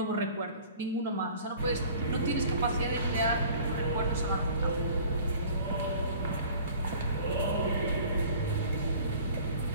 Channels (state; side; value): inverted; both; correlation -0.48